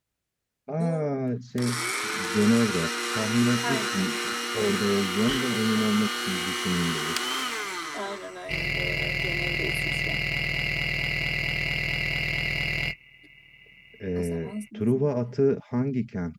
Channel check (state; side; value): identical; both; correlation 1.00